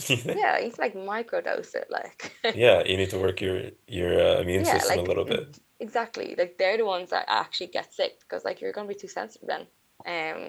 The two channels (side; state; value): both; identical; correlation 1.00